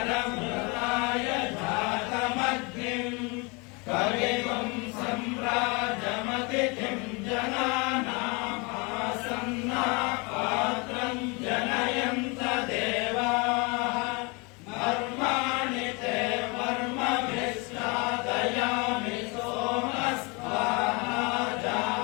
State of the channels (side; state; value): right; quieter; 29.5 dB